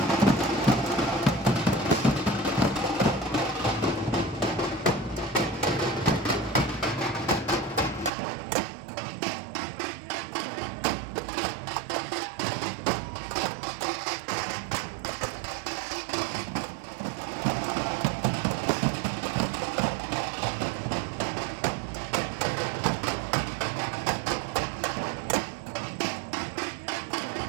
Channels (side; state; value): left; drops out; at 8.1 s